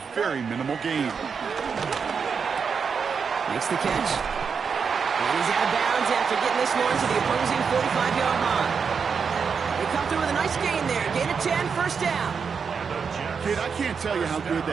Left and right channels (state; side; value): quieter; left; 6.0 dB